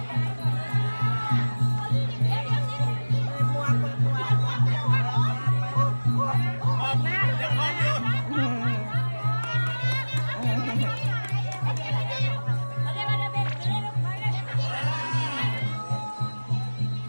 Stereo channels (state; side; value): inverted; both; correlation -1.00